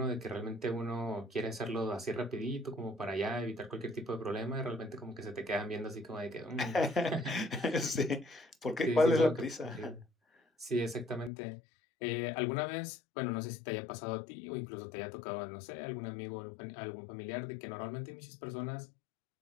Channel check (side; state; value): right; drops out; at 11.3 s